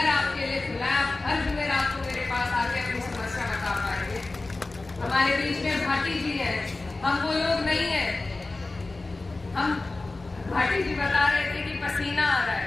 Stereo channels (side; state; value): right; quieter; 3.3 dB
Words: आपके लिए खुला है। आप हर जुमेरात को मेरे पास आके अपनी समस्या बता पाएंगे। हमारे बीच में भाटी जी है, हम वो लोग नहीं है। हम, भाटी जी बता रहे थे कि पसीना आ रहा